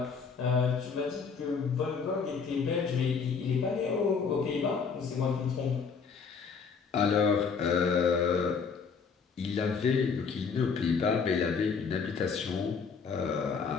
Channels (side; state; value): right; quieter; 5.7 dB